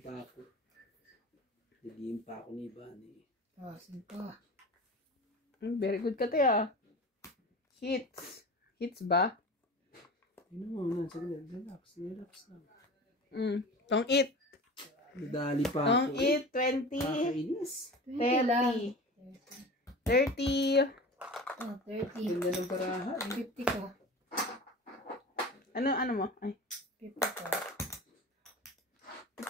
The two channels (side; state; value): both; normal; correlation 0.34